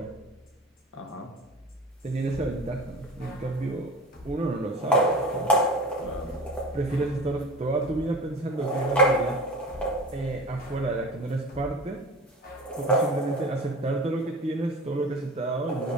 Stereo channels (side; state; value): both; normal; correlation 0.36